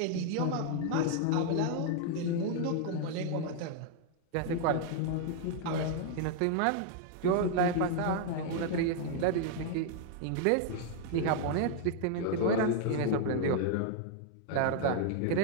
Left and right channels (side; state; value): both; different; correlation 0.00